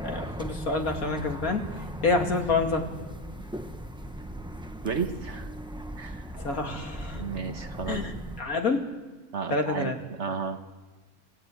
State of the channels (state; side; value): normal; both; correlation 0.14